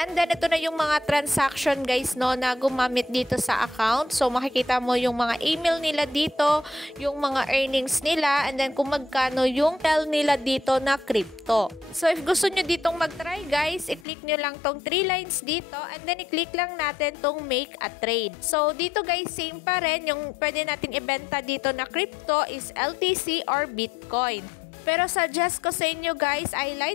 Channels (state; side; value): drops out; right; at 14.1 s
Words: then ito na yung mga transaction guys no na gumamit dito sa account. So makikita mo yung mga email nila dito, yung mga earnings nila, and then kung magkano yung sell nila dito na crypto. So if gusto nyo ditong mag-try guys, i-click nyo lang tong 3 lines dito, and then i-click lang natin tong make a trade. So dito guys, same pa rin, yung pwede nating ibenta dito na crypto is LTC or Bitcoin. Pero suggest ko sa inyo guys ay